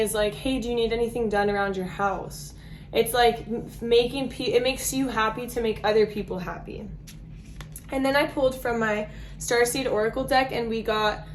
like, hey, do you need anything done around your house? It's like it makes you happy to make other people happy. And then I pulled from my Starseed Oracle deck, and we got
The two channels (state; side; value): identical; both; correlation 1.00